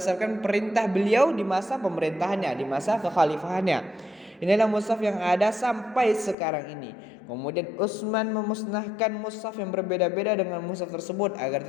perintah beliau di masa pemerintahannya, di masa kekhalifahannya. Inilah mushaf yang ada sampai sekarang ini. Kemudian Utsman memusnahkan mushaf yang berbeda-beda dengan mushaf tersebut agar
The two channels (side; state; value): right; drops out; at 6.4 s